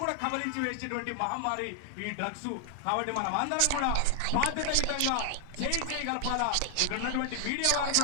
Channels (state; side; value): different; both; correlation 0.00